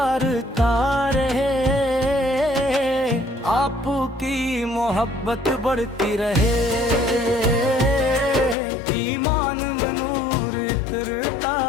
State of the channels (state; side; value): drops out; right; at 8.6 s